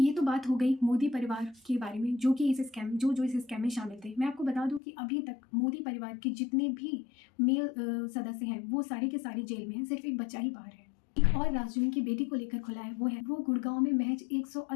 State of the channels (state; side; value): drops out; right; at 4.8 s